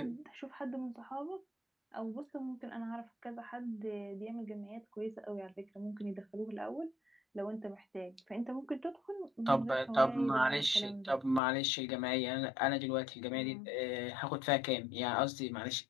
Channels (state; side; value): drops out; right; at 11.4 s